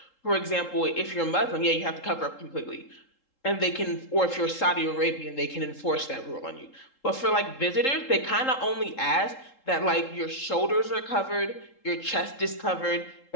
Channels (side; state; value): right; late; 3.7 ms